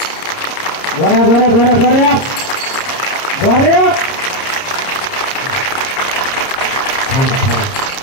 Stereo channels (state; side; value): late; right; 30 ms